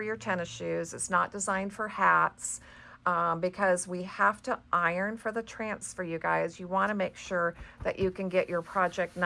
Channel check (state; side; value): identical; both; correlation 1.00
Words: your tennis shoes. It's not designed for hats. Because we have to iron for the transfer, you guys. You want to make sure that you can get your project